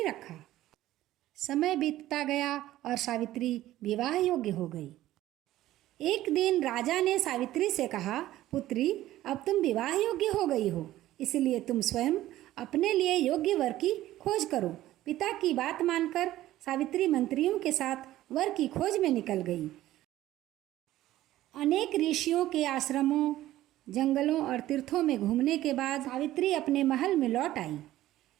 रखा। समय बीतता गया और सावित्री विवाह योग्य हो गई। एक दिन राजा ने सावित्री से कहा, पुत्री, अब तुम विवाह योग्य हो गई हो, इसलिए तुम स्वयं अपने लिए योग्य वर की खोज करो। पिता की बात मानकर सावित्री मंत्रियों के साथ वर की खोज में निकल गई। अनेक ऋषियों के आश्रमों, जंगलों और तीर्थों में घूमने के बाद सावित्री अपने महल में लौट आई।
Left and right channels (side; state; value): left; quieter; 14.7 dB